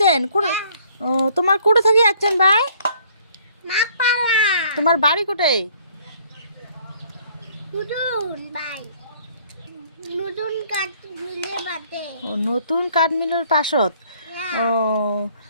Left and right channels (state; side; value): inverted; both; correlation -0.60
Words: ও তোমার কোথা থেকে যাচ্ছেন ভাই? তোমার বাড়ি কোথায়? নতুন কাঠ মিলের পাশত। ও